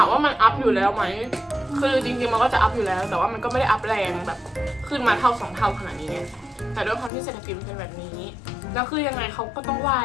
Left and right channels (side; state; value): right; drops out; at 7.1 s